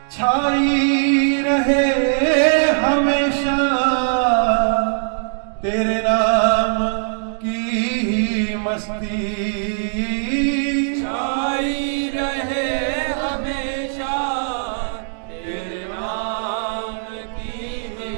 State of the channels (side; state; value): left; silent; digital silence